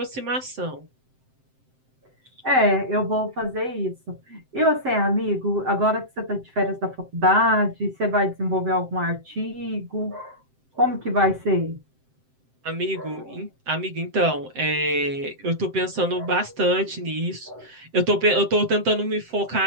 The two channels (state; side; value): late; left; 7.7 ms